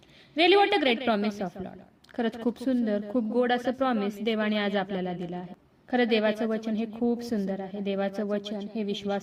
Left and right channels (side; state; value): both; identical; correlation 1.00